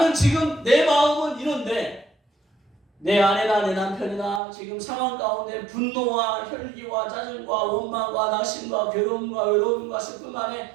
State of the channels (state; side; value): drops out; left; at 4.4 s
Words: 지금 내 마음은 이런데 내 아내나 내 남편이나 지금 상황 가운데 분노와 혈기와 짜증과 원망과 낙심과 괴로움과 외로움과 슬픔 안에